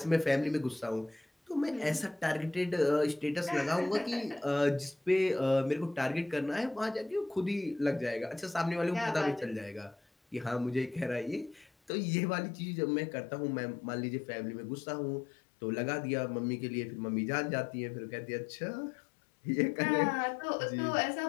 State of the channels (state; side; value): drops out; right; at 11.9 s